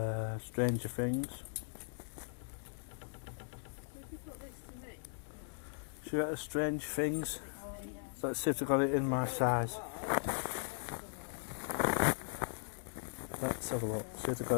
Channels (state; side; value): silent; right; digital silence